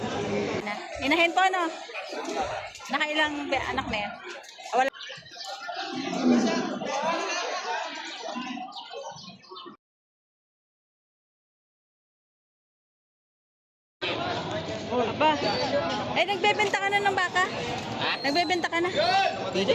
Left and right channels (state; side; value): identical; both; correlation 1.00